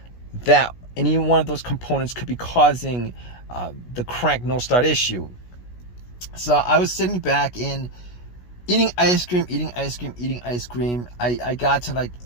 that any one of those components could be causing the crank no start issue. So I was sitting back and eating ice cream. I got to like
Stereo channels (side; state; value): right; late; 16 ms